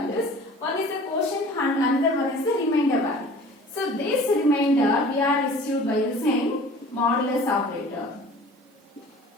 One is the quotient and another one is the remainder value. So this remainder we are received by using modulus operator.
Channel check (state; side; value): normal; both; correlation 0.45